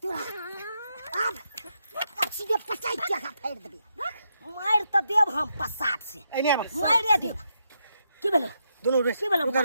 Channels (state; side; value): inverted; both; correlation -0.81